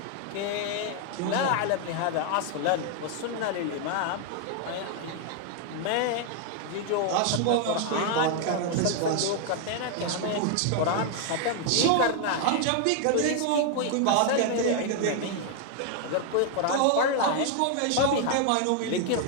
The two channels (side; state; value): both; different; correlation 0.00